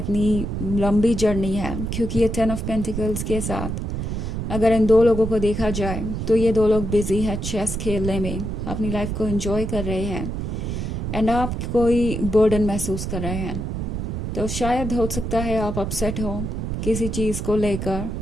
लंबी जर्नी है। क्योंकि ये 10 ऑफ पेंटिकल्स के साथ अगर इन दो लोगों को देखा जाए तो ये दो लोग बिजी हैं चेस खेलने में, अपनी लाइफ को एंजॉय कर रहे हैं एंड आप कोई बर्डन महसूस कर रहे हैं। तो शायद हो सकता है आप अपसेट हो किसी चीज़ को लेकर,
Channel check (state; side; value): noise; right; rumble, 3 dB below the sound